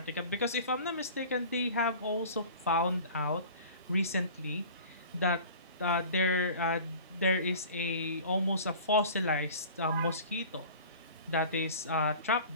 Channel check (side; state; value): both; inverted; correlation -0.42